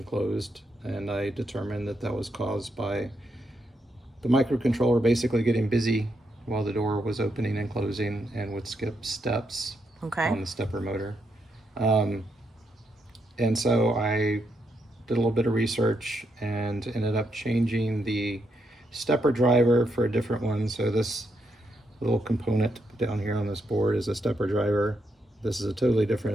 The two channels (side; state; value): both; normal; correlation 0.80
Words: closed, and I determined that that was caused by the microcontroller basically getting busy while the door was opening and closing and would skip steps on the stepper motor. And so I did a little bit of research and ended up changing the stepper driver for a different one. So this little component down here on this board is a stepper driver. This is a totally